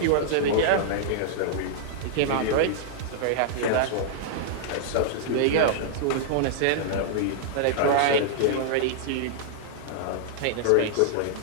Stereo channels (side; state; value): both; different; correlation -0.01